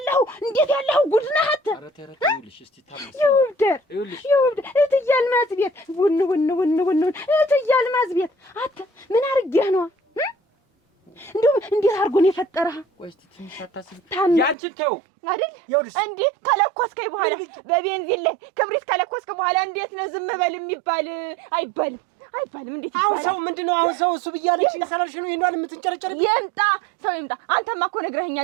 ጉድ ነህ አት ይውብደር እትዬ አልማዝ ቤት ውን እትዬ አልማዝ ቤት አት ምን አድርጌህ ነው? እንደው እንዴት አድርጎ ነው የፈጠረህ? ቆይ እስቲ ትንሽ አታስብ። ያንቺን ተው አይደል እንዴ ከለኮስከኝ በኋላ በቤንዚን ላይ ክብሪት ከለኮስከ በኋላ እንዴት ነው ዝም በል የሚባል? አይባልም። አይባልም። እንዴት ይባላል? አሁን ሰው ምንድነው? አሁን ሰው እሱ ብያለች ሰላልሽ ነው ይሄን የምትንጨረጨር? ይምጣ ሰው ይምጣ። አንተማ እኮ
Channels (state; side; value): drops out; left; at 14.6 s